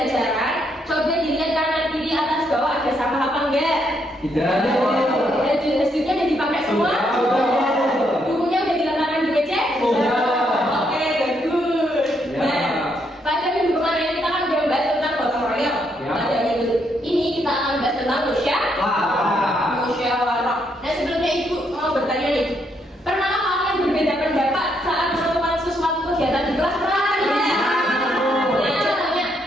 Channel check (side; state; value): both; normal; correlation 0.75